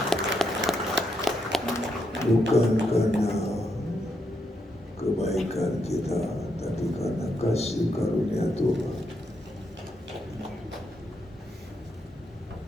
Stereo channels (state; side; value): normal; both; correlation 0.80